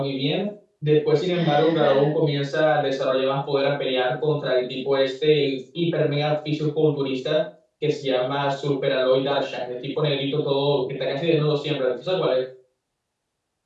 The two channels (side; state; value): both; identical; correlation 1.00